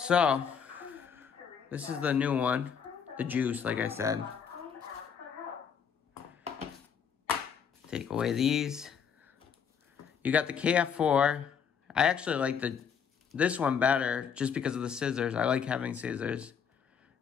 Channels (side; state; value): right; quieter; 7.1 dB